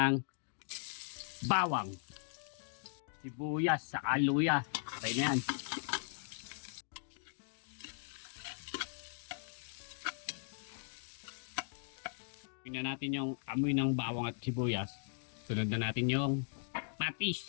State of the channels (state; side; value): silent; right; digital silence